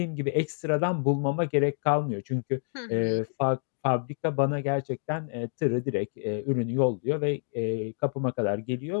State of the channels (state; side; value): silent; right; digital silence